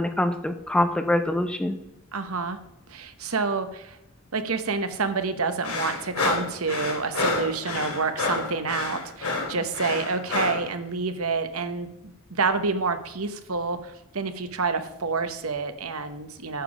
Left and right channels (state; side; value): normal; both; correlation 0.00